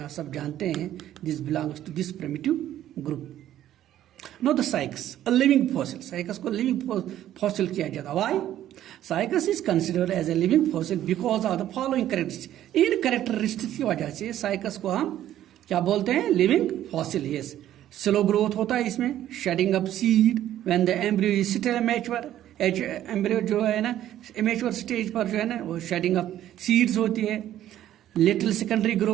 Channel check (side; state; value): left; quieter; 12.3 dB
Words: आप सब जानते हैं। This belongs to this primitive group. Now the Cycas, a living fossil. Cycas को living fossil किया जाता है। Why? Cycas is considered as a living fossil because of the following characteristics. In characteristics की वजह से Cycas को हम क्या बोलते हैं? Living fossil. Yes. Slow growth होता है इसमें, shedding of seed when the embryo is still immature. Embryo जो है ना इमेच्योर स्टेज पर जो है ना वो शेडिंग ऑफ सीड्स होती है। Little secondary